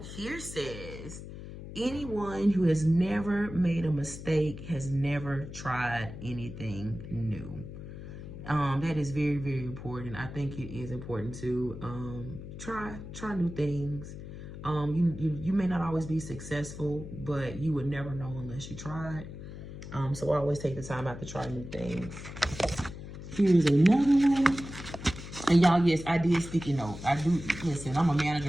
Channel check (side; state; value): left; noise; hum, 11 dB below the sound